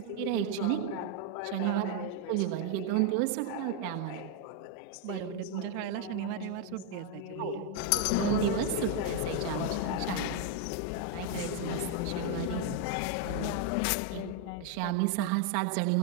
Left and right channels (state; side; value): different; both; correlation 0.01